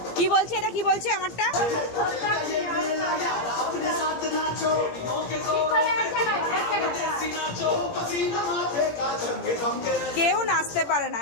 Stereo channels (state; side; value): late; right; 17 ms